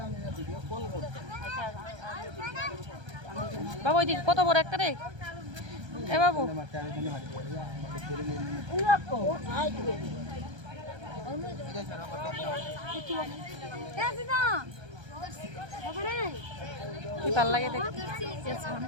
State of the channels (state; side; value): late; left; 1.3 ms